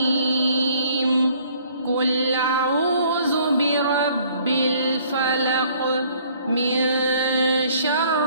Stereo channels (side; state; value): both; inverted; correlation -0.59